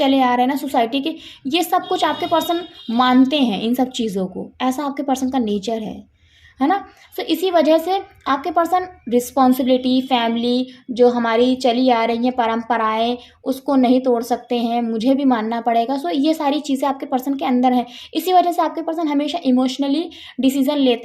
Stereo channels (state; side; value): identical; both; correlation 1.00